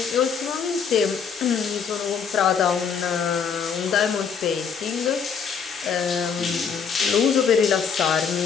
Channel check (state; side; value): quieter; right; 6.6 dB